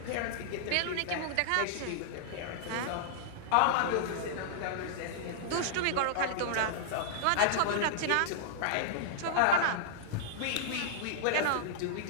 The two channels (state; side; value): different; both; correlation -0.01